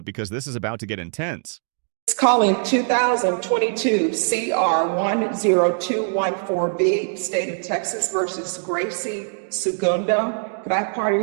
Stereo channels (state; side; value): silent; left; 64 dB below the other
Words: because this is about to get intense. It's calling 2022 CR 10214B, State of Texas versus Gracie Segundo. Could I have